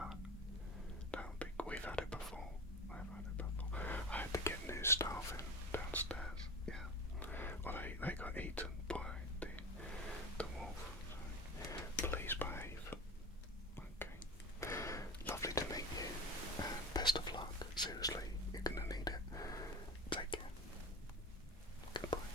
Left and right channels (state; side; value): normal; both; correlation 0.30